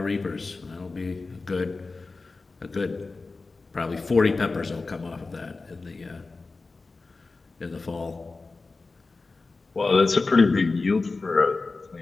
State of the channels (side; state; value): right; quieter; 3.8 dB